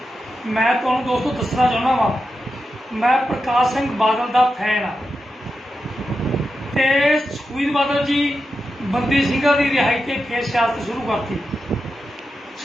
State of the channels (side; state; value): both; normal; correlation 0.89